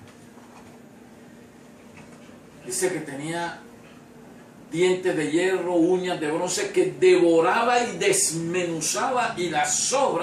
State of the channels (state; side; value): identical; both; correlation 1.00